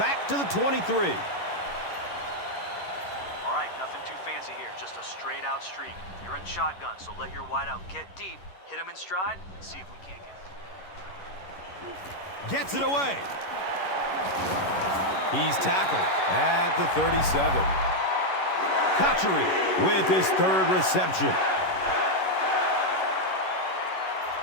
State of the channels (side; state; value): right; late; 11 ms